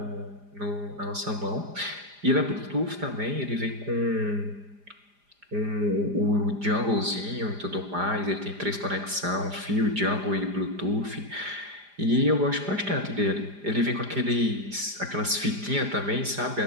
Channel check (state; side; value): late; left; 4.9 ms